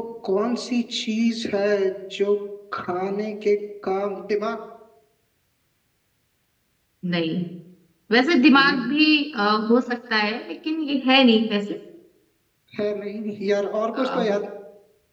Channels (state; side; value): identical; both; correlation 1.00